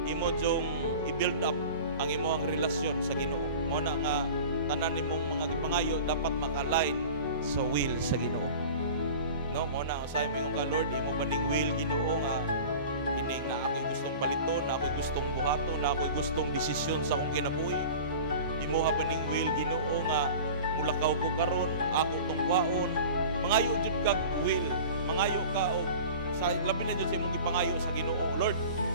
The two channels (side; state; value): both; inverted; correlation -0.38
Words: imo jong i-build up ang imong relasyon sa Ginoo. Mao na nga tanan nimong mga gipangayo dapat maka-align sa will sa Ginoo. No, mo na usahay mo yung ka Lord, imo ba ning will Ginoo nga kining na ako'y gustong baliton, na ako'y gustong buhaton, na ako'y gustong desisyon sa akong kinabuhi. Imo ba ning will Ginoo nga mulakaw ko karon, ako tong kwaon. Mangayo jud kag will, mangayo ka og sa labi na jud sa imong gipangayo sa Ginoo. Lord,